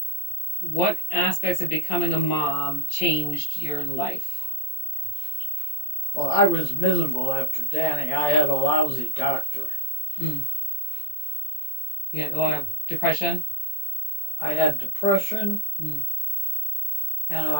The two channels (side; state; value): right; late; 20 ms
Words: What aspects of becoming a mom changed your life? Well, I was miserable after Danny. I had a lousy doctor. You had a lot of depression? I had depression, Mm. and